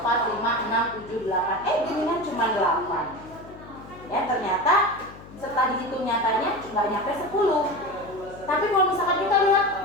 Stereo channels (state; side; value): noise; left; hum, 18 dB below the sound